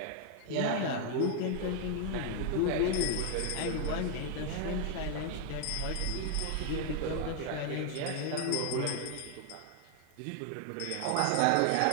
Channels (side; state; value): both; different; correlation 0.00